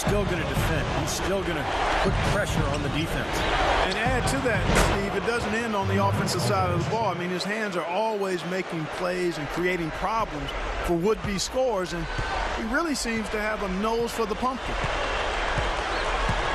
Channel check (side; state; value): both; identical; correlation 1.00